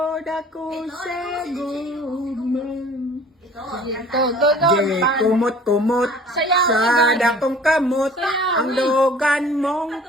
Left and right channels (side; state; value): both; normal; correlation 0.49